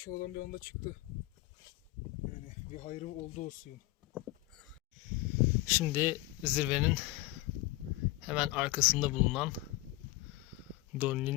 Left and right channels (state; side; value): quieter; right; 19.0 dB